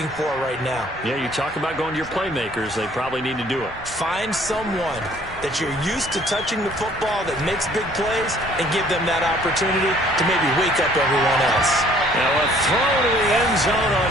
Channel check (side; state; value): both; normal; correlation 0.58